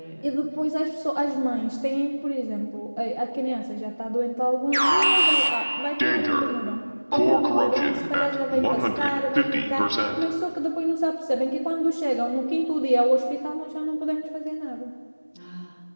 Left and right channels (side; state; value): both; inverted; correlation -1.00